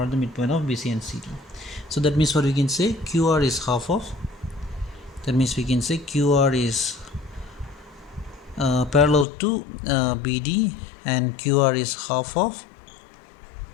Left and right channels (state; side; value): drops out; right; at 9.2 s